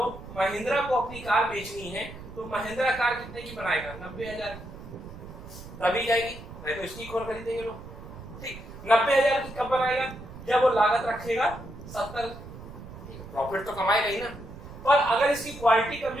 महिंद्रा को अपनी कार बेचनी है तो महिंद्रा कार कितने की बनाएगा? 90,000 की, तभी जाएगी, नहीं तो स्टिक और खरीदेंगे लोग। ठीक, 90,000 की कब बनाएगा? जब वो लागत रखेगा 70, प्रॉफिट तो कमाएगा ही ना। पर अगर इसकी क्वालिटी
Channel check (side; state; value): right; noise; rumble, 14 dB below the sound